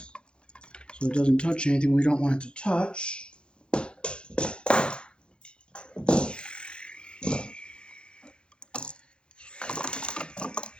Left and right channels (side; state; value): right; late; 0.054 ms